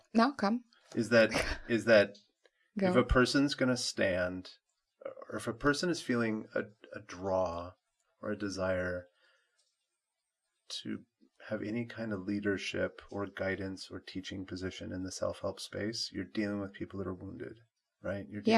come. Is that if a person's going to stand, or if a person is feeling a draw or a desire to have any kind of leadership or guidance or teaching position in the self-help space, you're dealing with people that are wounded, right? You're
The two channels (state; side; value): identical; both; correlation 1.00